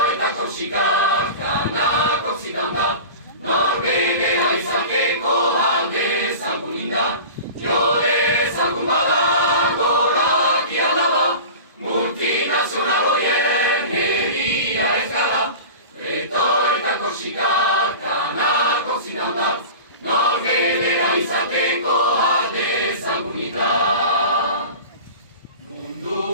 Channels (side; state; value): both; inverted; correlation -0.35